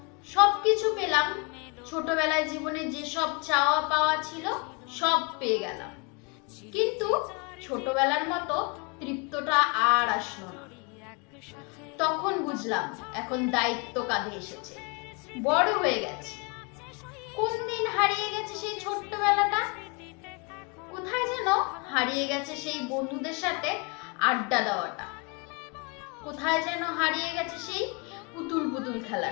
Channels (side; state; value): right; quieter; 31.3 dB